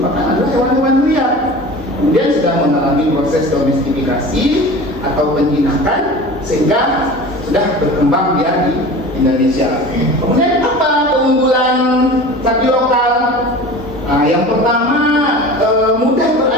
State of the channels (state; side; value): normal; both; correlation 0.37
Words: adalah hewan-hewan liar. Kemudian sudah mengalami proses domestifikasi atau penjinakan sehingga sudah berkembang dia di Indonesia. Kemudian apa keunggulan sapi lokal? Nah, yang pertama mudah